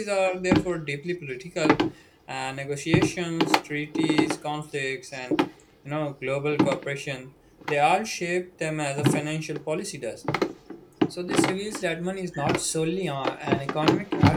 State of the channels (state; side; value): identical; both; correlation 1.00